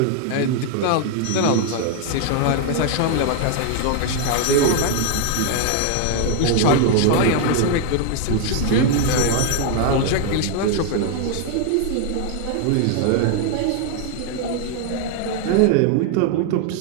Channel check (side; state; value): both; different; correlation 0.00